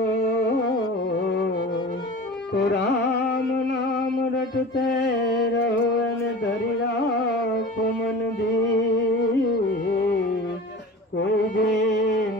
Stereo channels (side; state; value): both; normal; correlation 0.36